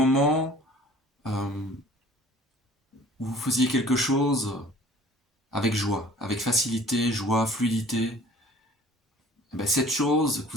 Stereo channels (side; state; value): both; normal; correlation 0.49